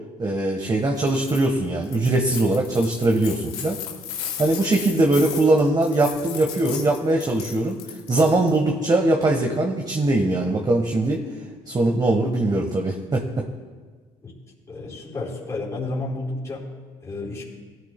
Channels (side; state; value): both; normal; correlation 0.75